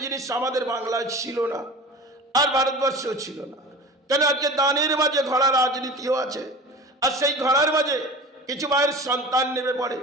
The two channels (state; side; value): normal; both; correlation 0.36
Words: জিনিস আমাদের বাংলায় ছিল না, আর ভারতবর্ষেও ছিল না। কেন আজকে দানের মাঝে ঘোড়া রাজনীতিও আছে, আর সেই ঘোড়ার মাঝে কিছু মায়ের সন্তান নেমে পড়ে,